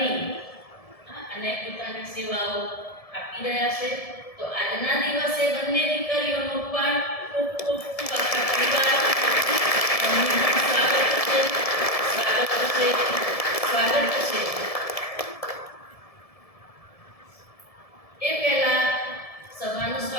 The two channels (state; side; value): late; right; 1.7 ms